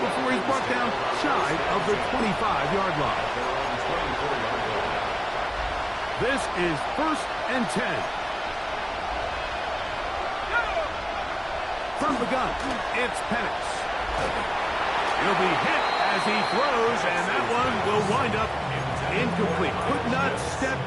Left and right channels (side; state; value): both; identical; correlation 1.00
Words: before he's brought down shy of the 25-yard line. This is 1st and 10. From the gun, it's Penix. He'll be hit as he throws, and that one will wind up incomplete. Could not step